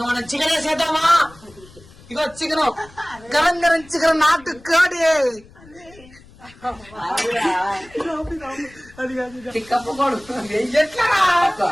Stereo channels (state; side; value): noise; left; rumble, 24 dB below the sound